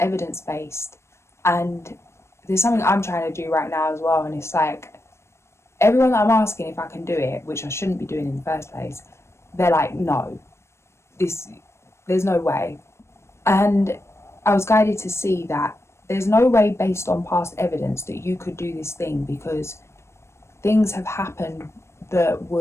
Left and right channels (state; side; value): late; right; 0.13 ms